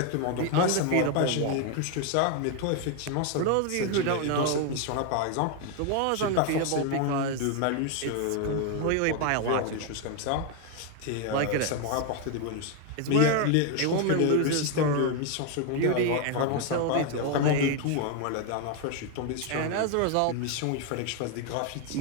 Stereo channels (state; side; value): different; both; correlation 0.01